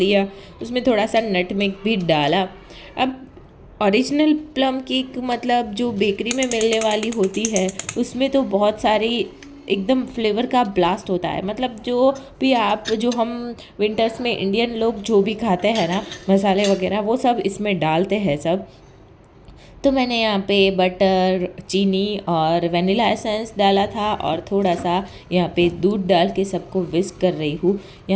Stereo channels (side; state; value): both; identical; correlation 1.00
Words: उसमें थोड़ा सा नटमेग भी डाला। अब ओरिजिनल प्लम केक मतलब जो बेकरी में मिलने वाली होती है, उसमें तो बहुत सारी एकदम फ्लेवर का ब्लास्ट होता है। मतलब जो भी आप जो हम विंटर्स में इंडियन लोग जो भी खाते हैं ना मसाले वगैरह, वो सब इसमें डालते हैं सब। तो मैंने यहाँ पे बटर, चीनी और वनीला एसेंस डाला था, और थोड़ा सा यहाँ पे दूध डाल के सबको विस्क कर रही हूँ।